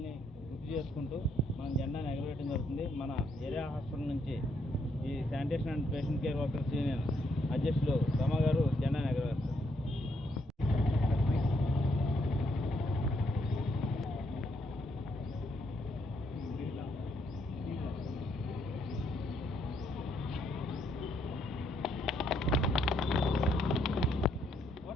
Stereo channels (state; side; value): normal; both; correlation 0.74